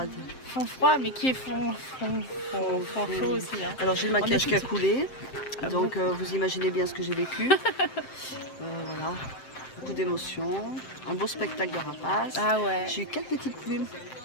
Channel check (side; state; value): right; late; 7.7 ms